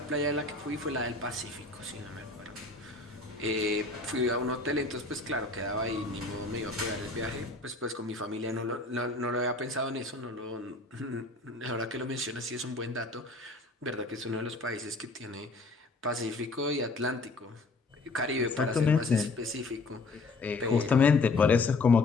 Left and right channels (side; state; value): right; quieter; 3.4 dB